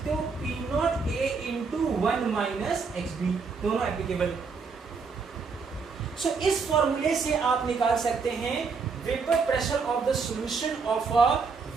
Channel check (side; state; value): left; quieter; 5.0 dB